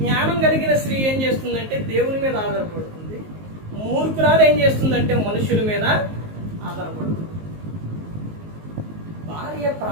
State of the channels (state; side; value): late; left; 19 ms